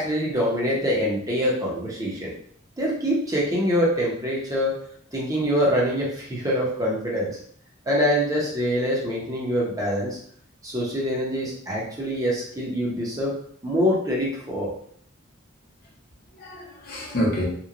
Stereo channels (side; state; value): both; normal; correlation 0.37